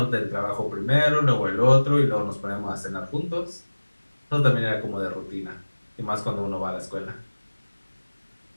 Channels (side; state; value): both; inverted; correlation -1.00